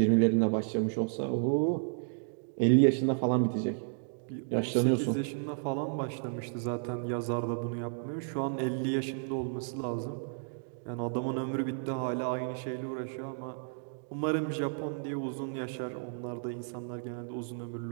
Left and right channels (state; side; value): silent; left; digital silence